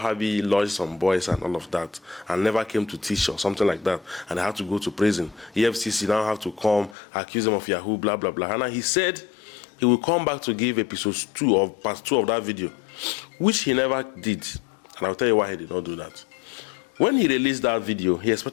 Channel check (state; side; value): drops out; right; at 7.0 s